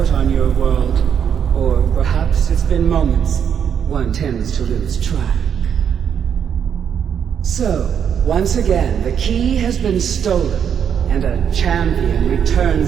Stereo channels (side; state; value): left; quieter; 8.1 dB